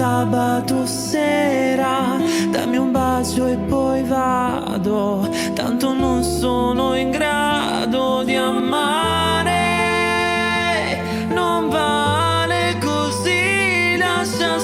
sera. Dammi un bacio e poi vado, tanto non sono in grado di amare. Non vale così, lascia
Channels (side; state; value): both; identical; correlation 1.00